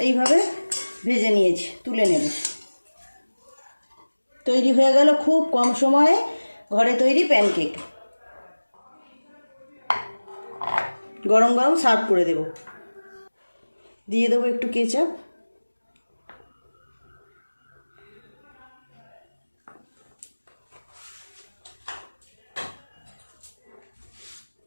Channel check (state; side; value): inverted; both; correlation -1.00